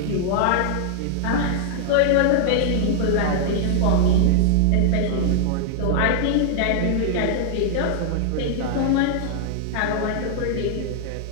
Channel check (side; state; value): both; different; correlation -0.01